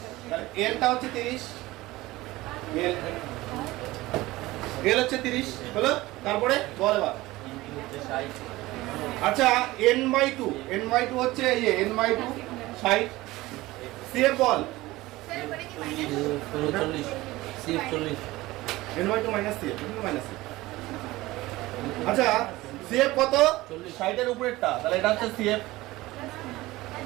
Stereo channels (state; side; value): quieter; left; 18.8 dB